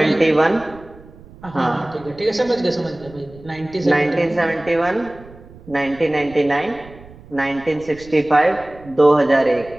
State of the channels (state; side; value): noise; right; rumble, 21 dB below the sound